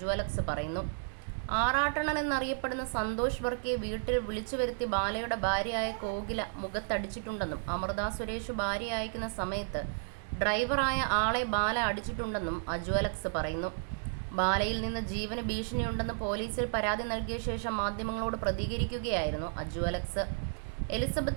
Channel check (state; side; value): silent; left; digital silence